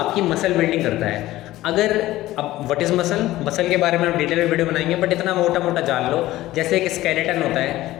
मसल बिल्डिंग करता है। अगर अब व्हाट इज़ मसल के बारे में हम डिटेल में वीडियो बनाएंगे, बट इतना मोटा मोटा जान लो, जैसे एक स्केलेटन होता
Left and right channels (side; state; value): right; quieter; 16.1 dB